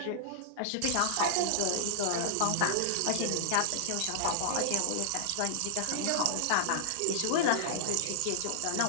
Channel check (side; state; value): both; different; correlation -0.01